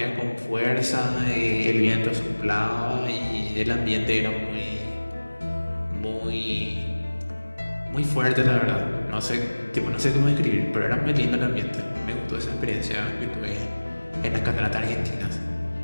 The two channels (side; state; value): both; inverted; correlation -1.00